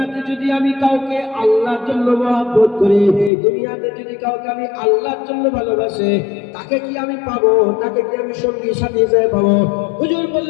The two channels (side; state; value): right; drops out; at 3.3 s